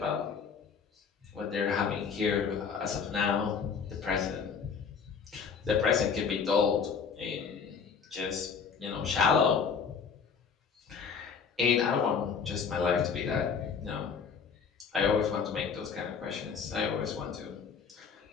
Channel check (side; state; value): right; quieter; 6.2 dB